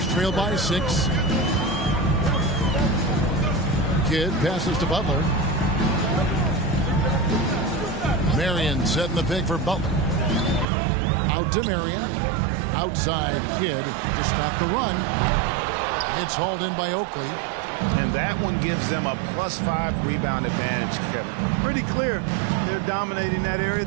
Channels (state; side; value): drops out; left; at 10.7 s